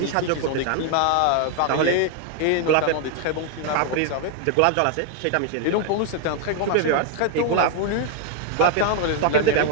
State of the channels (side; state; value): both; different; correlation 0.01